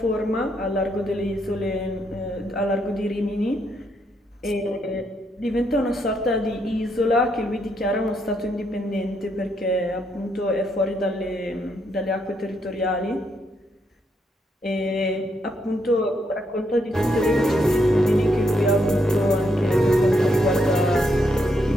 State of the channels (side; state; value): both; normal; correlation 0.77